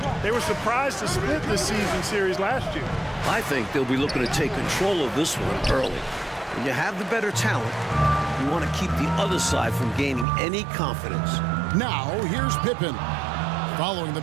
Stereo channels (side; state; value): left; drops out; at 10.2 s